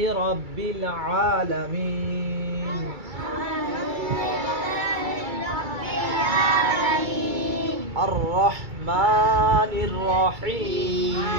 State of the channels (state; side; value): late; left; 2.3 ms